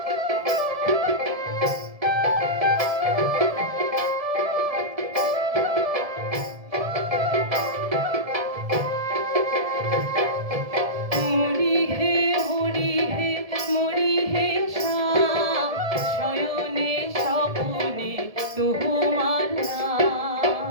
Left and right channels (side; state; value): left; late; 1.7 ms